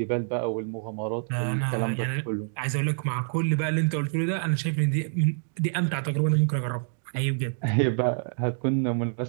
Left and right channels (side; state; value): left; silent; digital silence